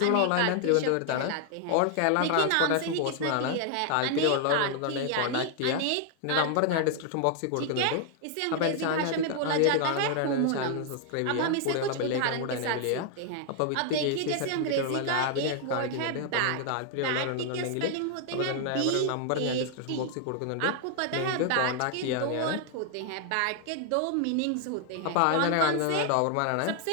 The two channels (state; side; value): different; both; correlation 0.00